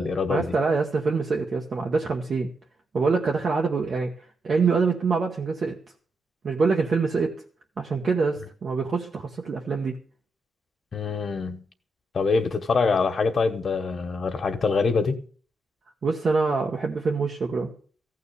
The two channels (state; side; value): normal; both; correlation 0.81